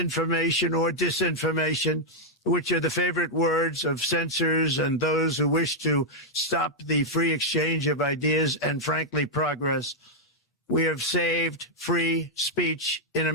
or disinformation, which are the favorite words of censors and those who wish to stop the free exchange of ideas and, frankly, progress. We have saved free speech in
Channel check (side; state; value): both; normal; correlation -0.04